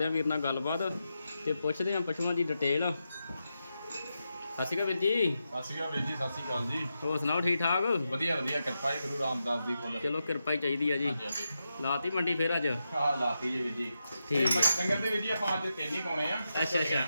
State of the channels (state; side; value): inverted; both; correlation -0.87